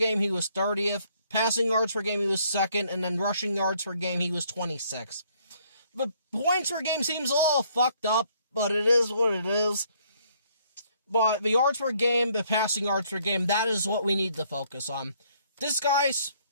he was 30th. Passing yards per game, he was second. And then rushing yards per game, he was 26th. But points per game seems a little fucked up, but it is what it is. But the yards per game, the passing yards per game, that is what we need to focus on. This guy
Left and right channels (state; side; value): inverted; both; correlation -0.66